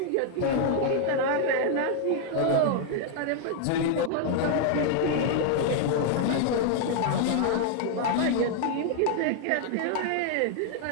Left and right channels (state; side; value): different; both; correlation 0.00